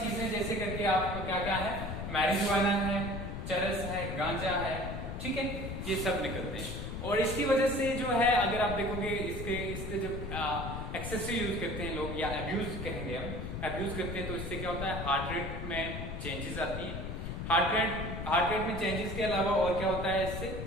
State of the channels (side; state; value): left; noise; rumble, 5 dB below the sound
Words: जैसे करके आपको क्या क्या है, मैरिजुआना है, चरस है, गांजा है, ठीक है, ये सब निकलते हैं। और इसकी वजह से जो है, अगर आप देखोगे इसके जब एक्सेसिव यूज करते हैं लोग, या अब्यूज कहेंगे हम, अब्यूज करते हैं, तो इससे क्या होता है, हार्ट रेट में चेंजेस आती है। हार्ट रेट में चेंजेस के अलावा और क्या होता है,